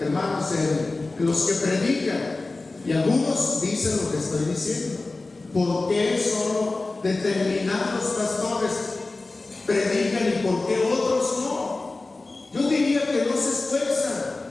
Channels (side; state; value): right; quieter; 3.3 dB